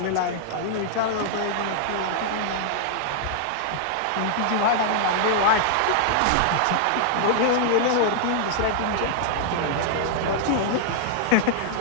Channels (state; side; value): different; both; correlation -0.01